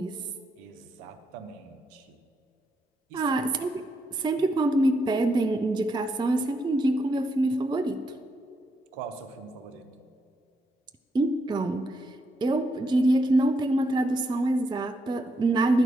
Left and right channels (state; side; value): normal; both; correlation 0.80